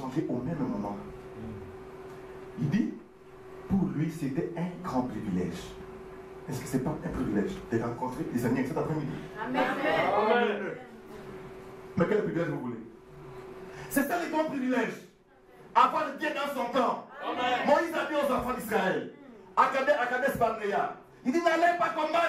au même moment. Il dit, pour lui, c'était un grand privilège. Est-ce que ce n'est pas un privilège de rencontrer les amis cet après-midi? Amen. Mais quel privilège vous voulez? C'est ça le grand privilège. Avoir Dieu dans son temps. Moïse a dit aux enfants d'Israël, à Kadesh Barnea, il dit, n'allez pas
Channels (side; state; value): both; identical; correlation 1.00